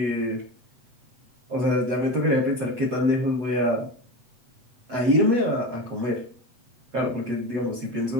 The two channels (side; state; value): left; late; 7.8 ms